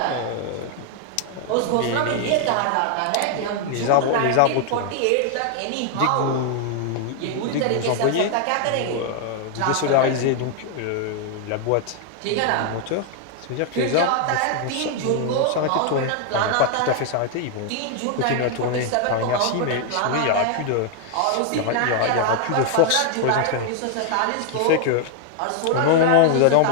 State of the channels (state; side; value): different; both; correlation 0.00